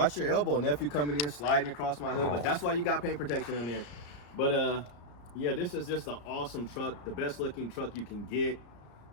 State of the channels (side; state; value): right; late; 34 ms